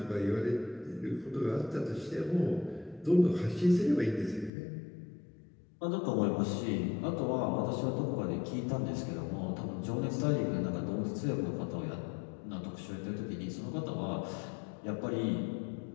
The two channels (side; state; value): right; drops out; at 4.5 s